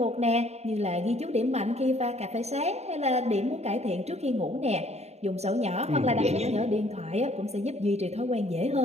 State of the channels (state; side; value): late; left; 0.31 ms